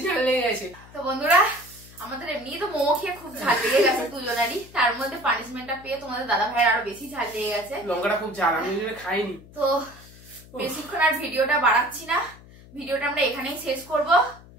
ঝাল লেগে গেছে। তো বন্ধুরা আমাদের এমনি তো মোমো খেয়ে খুব ঝাল লেগে গেছে দুজনেরই, তার মধ্যে পানিশমেন্টটা পেয়ে তোমাদের দাদা ভাইয়ের আরো বেশি ঝাল লেগে গেছে। লঙ্কাটা খুব ঝাল, আমি খাইনি। তো বেশিক্ষণ আর ভিডিওটা বাড়াচ্ছি না, ভিডিওটা আমরা এখানেই শেষ করব।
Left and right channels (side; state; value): left; noise; hum, 21 dB below the sound